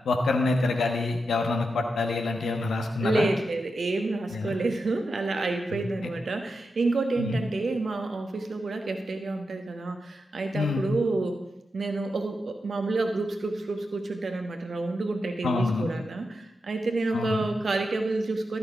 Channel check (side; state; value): both; normal; correlation 0.88